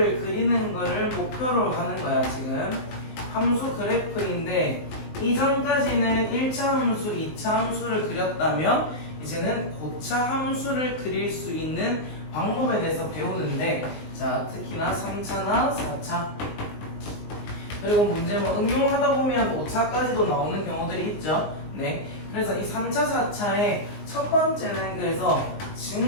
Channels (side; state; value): right; late; 19 ms